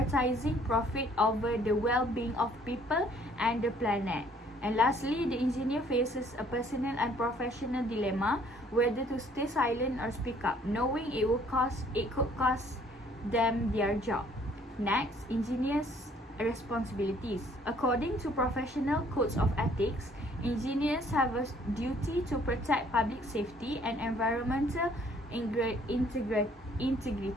profit over the well-being of people and the planet. And lastly, the engineer faces a personal and professional dilemma whether to stay silent or speak up, knowing it could cost them their job. Next, engineers' responsibilities. According to professional codes of ethics, engineers have a duty to protect public safety and environmental integrity.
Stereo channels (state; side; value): normal; both; correlation 0.60